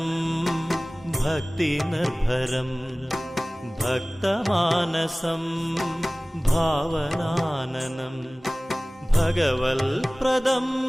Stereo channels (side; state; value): both; normal; correlation 0.98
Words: ഭക്തിനിർഭരം ഭക്തമാനസം ഭാവനാനനം ഭഗവൽപ്രദം